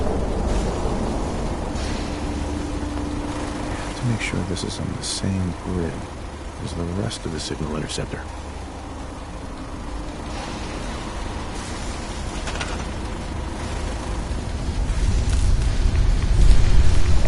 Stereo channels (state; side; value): identical; both; correlation 1.00